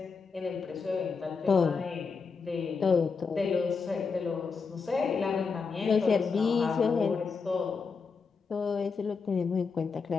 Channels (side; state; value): right; quieter; 5.1 dB